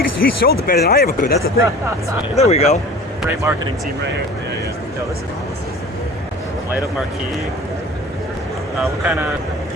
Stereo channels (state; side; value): normal; both; correlation 0.41